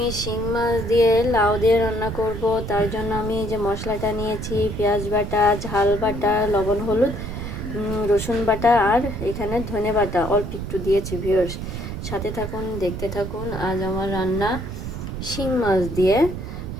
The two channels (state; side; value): noise; right; rumble, 6 dB below the sound